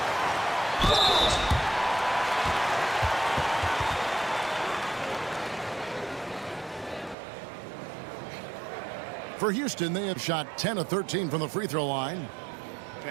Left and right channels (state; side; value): drops out; left; at 7.2 s